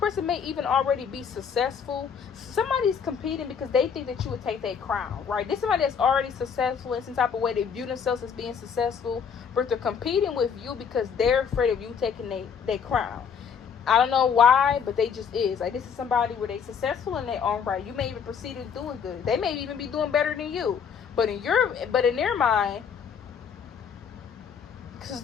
may even already be successful. Somebody's competing because they think that you would take their crown, right? This is somebody that's already successful in some type of way. They view themselves as being successful, but they're competing with you because they're afraid of you taking their crown. I don't know why, but they just is. Like, this is somebody where they successful in their own right. You may even proceed as doing good. They may even be doing better than you. But in their mind, because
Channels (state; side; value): quieter; right; 6.9 dB